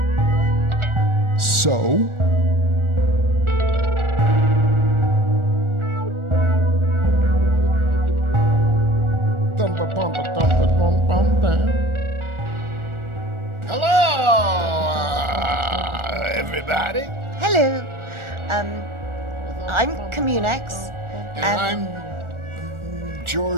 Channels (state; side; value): late; left; 1.4 ms